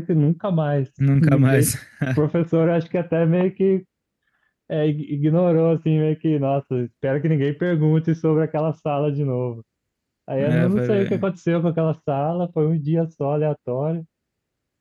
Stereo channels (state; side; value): identical; both; correlation 1.00